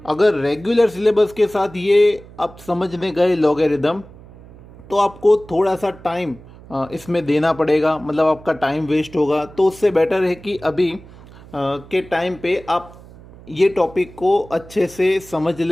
अगर रेगुलर सिलेबस के साथ ये आप समझने गए लॉगरिदम, तो आपको थोड़ा सा टाइम इसमें देना पड़ेगा, मतलब आपका टाइम वेस्ट होगा। तो उससे बेटर है कि अभी के टाइम पे आप ये टॉपिक को अच्छे से समझ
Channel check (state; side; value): noise; right; hum, 20 dB below the sound